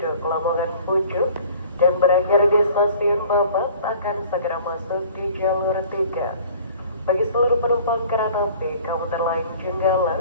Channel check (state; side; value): inverted; both; correlation -0.49